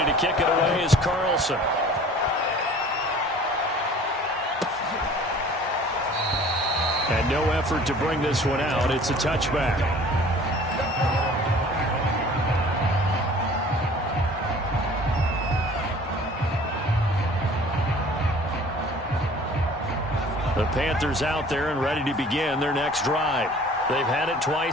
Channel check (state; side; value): normal; both; correlation 0.48